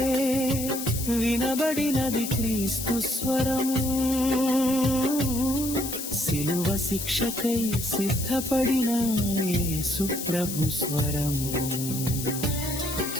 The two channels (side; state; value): left; noise; hiss, 6 dB below the sound